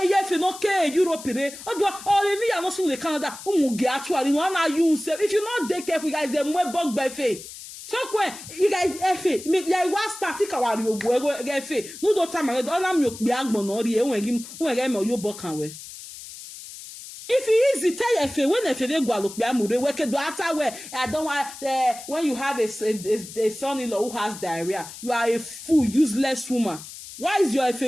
yefe no ke Europe re odo me ya no so le Canada umuge actually no na you say if you not take careful guys dem we bug by fe so when you guys efe me like one start kawari ogu efe no do time do na mi okpi agbon no ri enwe me oyo bokan we if it easy tell efe when efe dey gwa lokpi amure we ke do ata we I don't want when you have a son-in-law who has diarrhea you are a fool useless woman. Why is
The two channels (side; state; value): left; noise; hiss, 14 dB below the sound